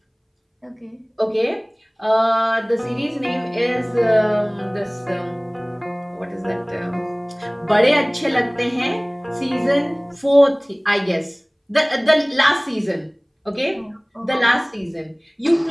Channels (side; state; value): both; identical; correlation 1.00